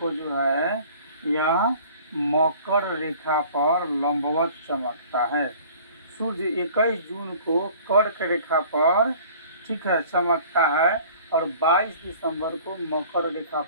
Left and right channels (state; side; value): inverted; both; correlation -0.50